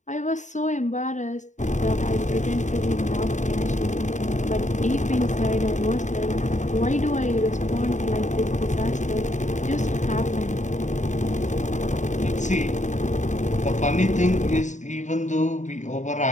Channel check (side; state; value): right; late; 0.35 ms